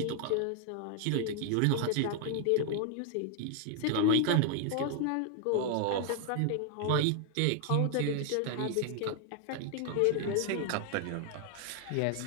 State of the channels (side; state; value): both; different; correlation 0.00